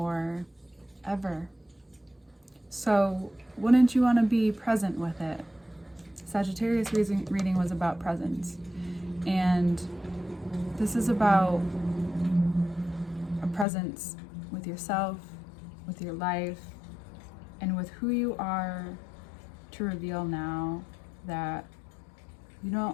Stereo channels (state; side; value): drops out; right; at 13.7 s